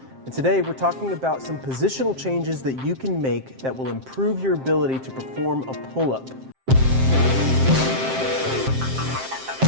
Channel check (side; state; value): left; late; 7.6 ms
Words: And today we're talking about some positional changes that you can make that will improve your ability to perform a pull-up.